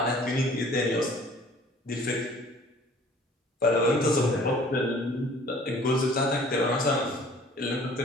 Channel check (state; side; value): normal; both; correlation 0.52